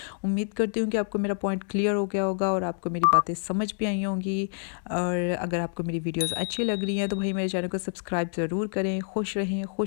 उम्मीद करती हूँ कि आपको मेरा पॉइंट क्लियर हो गया होगा और आपको मेरी बातें समझ भी आई होंगी। और अगर आपको मेरी वीडियोस अच्छी लग रही हैं तो भाई मेरे चैनल को सब्सक्राइब ज़रूर करें। खुश रहें,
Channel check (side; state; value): right; silent; digital silence